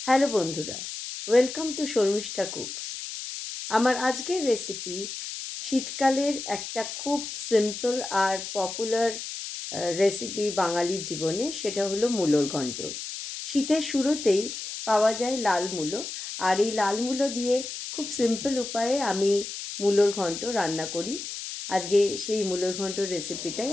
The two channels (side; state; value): left; noise; hiss, 8 dB below the sound